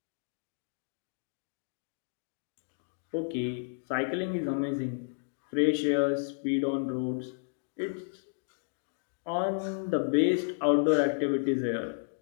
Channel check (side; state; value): right; silent; digital silence